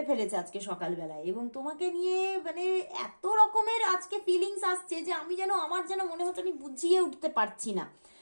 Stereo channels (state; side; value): inverted; both; correlation -1.00